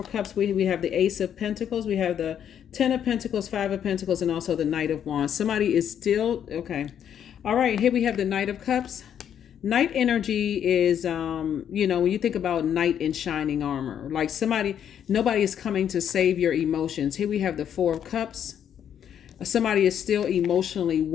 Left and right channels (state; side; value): quieter; right; 9.2 dB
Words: Cups. We have the Ace of Pentacles. We have the Ten of Pentacles, Five of Pentacles, and also the Knight of Wands. Somebody is still, okay. All right, here we have the Knight of Cups. Knight energy is, when you think about knight in shining armor, like nobody is coming to save your emotions. Here we have the Four of Cups. Somebody is still emotionally